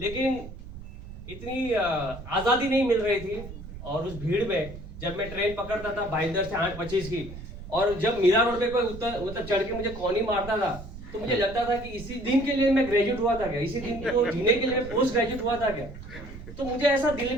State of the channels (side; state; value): right; noise; rumble, 13 dB below the sound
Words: लेकिन इतनी आज़ादी नहीं मिल रही थी। और उस भीड़ में जब मैं ट्रेन पकड़ता था भाईंदर से 8:25 की, और जब मीरा रोड पे कोई मतलब चढ़ के मुझे कॉनी मारता था, तो मुझे लगता था कि इसी दिन के लिए मैं ग्रेजुएट हुआ था क्या, इसी दिन को जीने के लिए पोस्ट ग्रेजुएट हुआ था क्या। तो मुझे ऐसा दिल